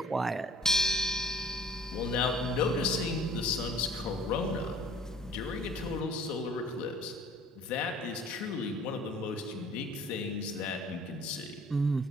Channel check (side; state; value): both; normal; correlation 0.52